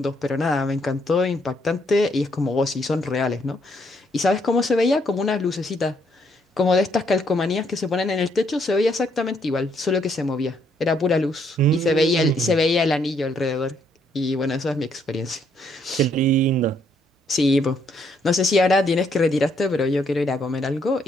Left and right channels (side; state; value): both; normal; correlation 0.71